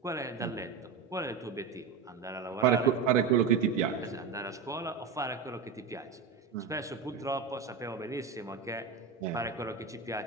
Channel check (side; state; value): left; quieter; 5.8 dB